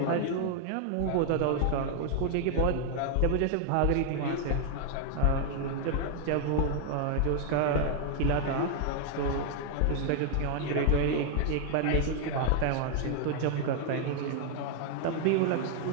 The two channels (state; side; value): different; both; correlation 0.00